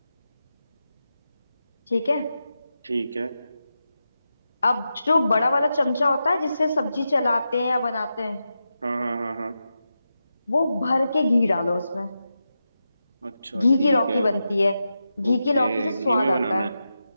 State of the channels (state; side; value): inverted; both; correlation -0.89